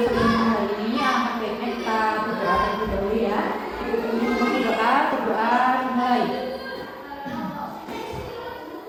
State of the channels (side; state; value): both; identical; correlation 1.00